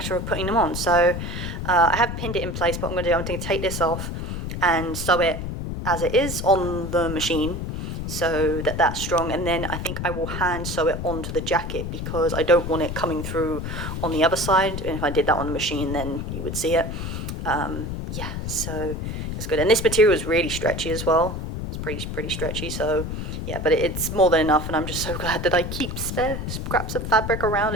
of putting them on. So I have pinned it in place. What I'm going to take this off and sew it as it is on the machine, so that that's strong, and then I think I will hand sew it onto the jacket because I don't want it coming through on the other side, and if I did that on the machine then you would see it. Yeah, so it's good, and this material is really stretchy as well. It's pretty stretchy, so yeah, but it's more than enough, and I'm just so glad that I keep spare scraps of fabric around.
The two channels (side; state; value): left; noise; rumble, 5 dB below the sound